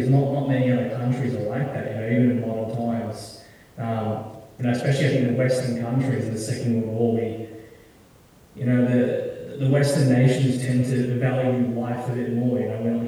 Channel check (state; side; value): identical; both; correlation 1.00